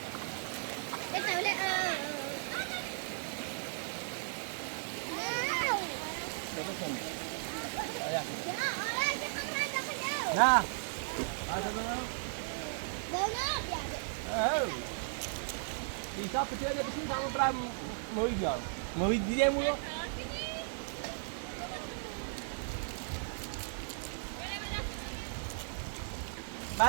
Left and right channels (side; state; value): left; silent; digital silence